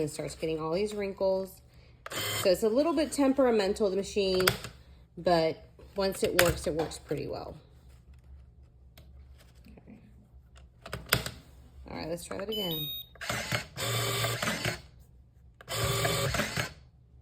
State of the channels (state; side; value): identical; both; correlation 1.00